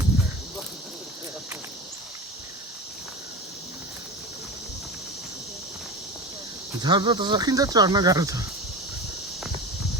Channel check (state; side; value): normal; both; correlation 0.28